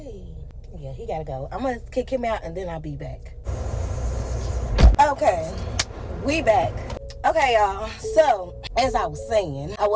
Yeah, he gotta go. I'm gonna kick him out and then I'll be back. Okay, we back. Okay, y'all. So, as I was saying, I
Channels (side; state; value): both; identical; correlation 1.00